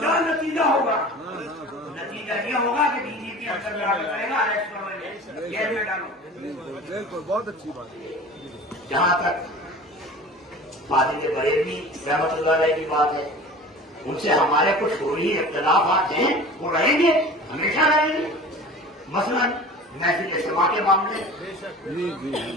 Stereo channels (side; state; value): both; normal; correlation 0.39